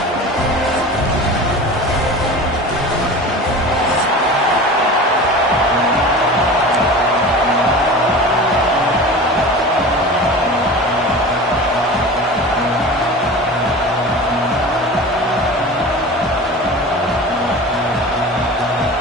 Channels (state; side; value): normal; both; correlation 0.35